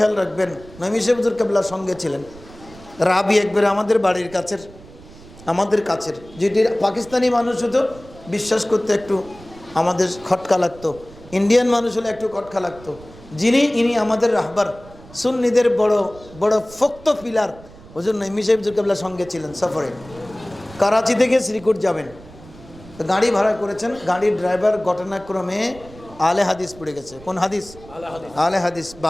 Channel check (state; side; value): noise; right; rumble, 20 dB below the sound